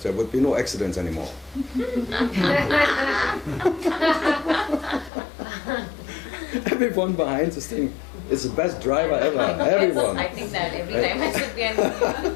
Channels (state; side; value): drops out; right; at 5.1 s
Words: there would be no accidents anymore. Everyone behind this thing is the best driver ever. Everyone. I think that every time I sit behind